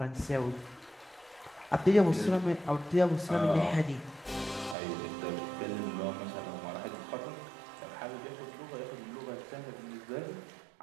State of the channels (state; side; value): drops out; left; at 4.8 s